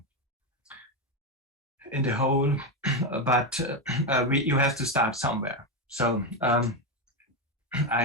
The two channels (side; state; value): both; normal; correlation 0.09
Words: in the whole, but you have to start somewhere. So